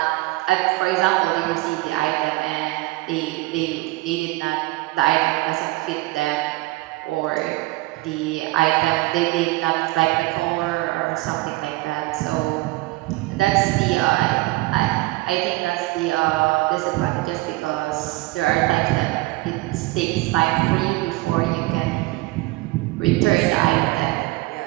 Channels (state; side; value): quieter; left; 21.2 dB